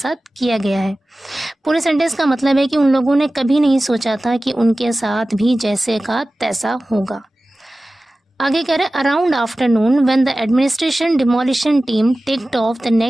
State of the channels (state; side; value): normal; both; correlation 0.96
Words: किया गया है। पूरे सेंटेंस का मतलब है कि उन लोगों ने कभी नहीं सोचा था कि उनके साथ भी जैसे का तैसा होगा। आगे कह रहे around afternoon when the administration demolition team ticked of the